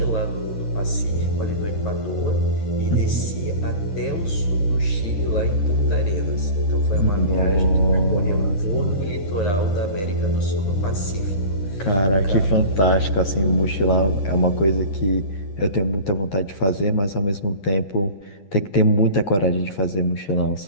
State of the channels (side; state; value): right; late; 10 ms